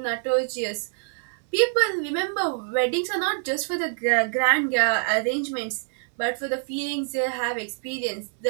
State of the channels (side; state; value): left; silent; digital silence